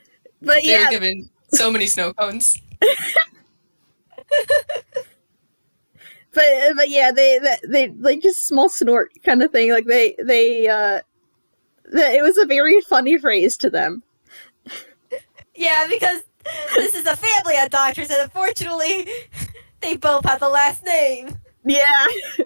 But They yeah, were given so many snow cones. but yeah, they like just small snort kind of thing. Like it was a very funny phrase to them. yeah, because this is a family of doctors, and unfortunately, they both have the last name. Yeah.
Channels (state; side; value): inverted; both; correlation -1.00